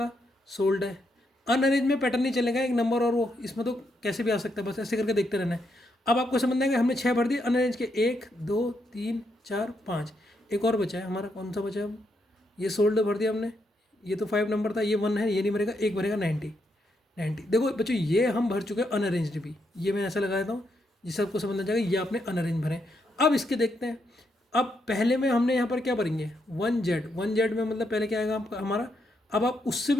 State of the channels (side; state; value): both; normal; correlation 0.79